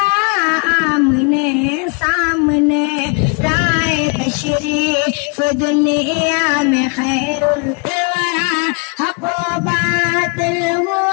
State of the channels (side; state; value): right; quieter; 33.2 dB